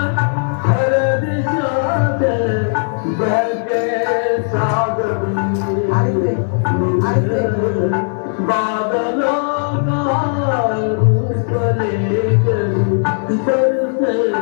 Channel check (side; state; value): right; silent; digital silence